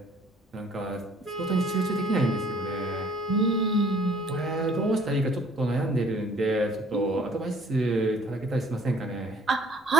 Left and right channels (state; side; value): normal; both; correlation 0.57